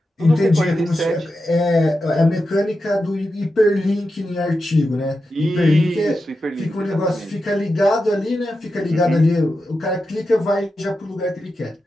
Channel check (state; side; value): normal; both; correlation 0.89